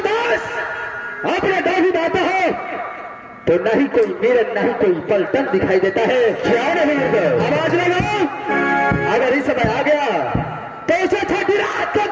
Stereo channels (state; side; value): identical; both; correlation 1.00